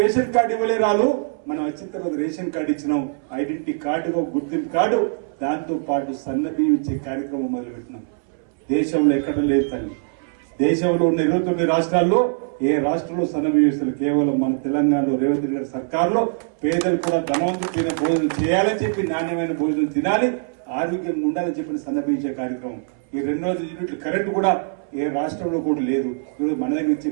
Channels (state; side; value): silent; left; 62 dB below the other